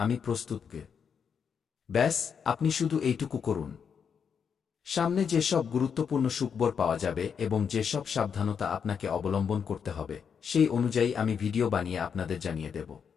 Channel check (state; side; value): quieter; right; 6.9 dB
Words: প্রস্তুত। ব্যাস, আপনি শুধু এইটুকু করুন। সামনে যেসব গুরুত্বপূর্ণ সুখবর পাওয়া যাবে এবং যেসব সাবধানতা আপনাকে অবলম্বন করতে হবে সেই অনুযায়ী আমি ভিডিও বানিয়ে আপনাদের জানিয়ে দেব।